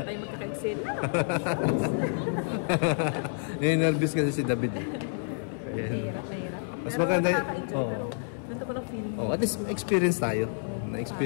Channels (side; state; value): right; silent; 59 dB below the other